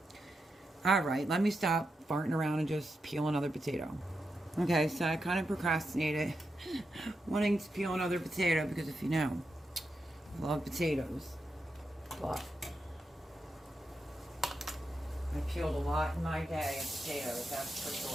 Alright, let me stop farting around and just peel another potato. Okay, so I kind of procrastinated wanting to peel another potato because if you know, I love potatoes. But I peeled a lot in my day of potatoes, that's for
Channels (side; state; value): both; normal; correlation 0.86